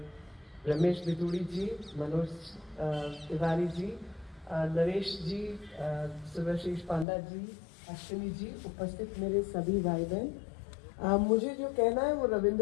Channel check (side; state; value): right; drops out; at 7.1 s